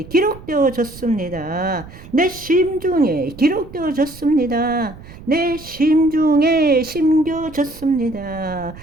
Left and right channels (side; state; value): right; noise; rumble, 17 dB below the sound